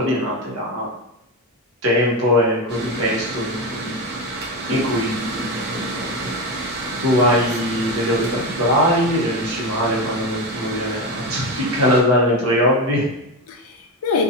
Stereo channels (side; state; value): both; normal; correlation 0.16